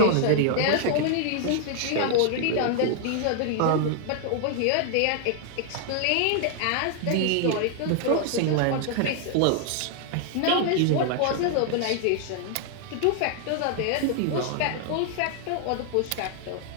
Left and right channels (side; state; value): both; different; correlation 0.00